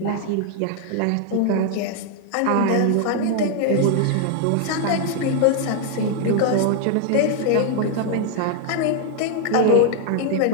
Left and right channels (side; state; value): both; different; correlation 0.00